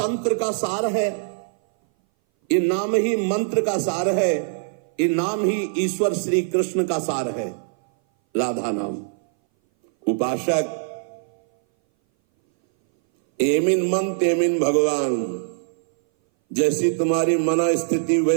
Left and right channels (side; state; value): left; silent; 60 dB below the other